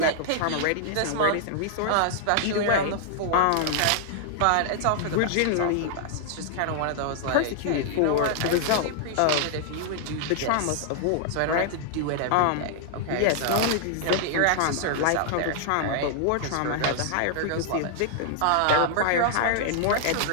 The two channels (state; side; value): different; both; correlation -0.01